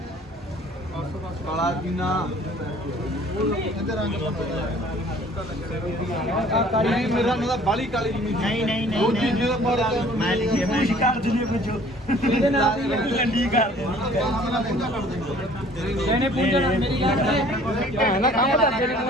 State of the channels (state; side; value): normal; both; correlation 0.53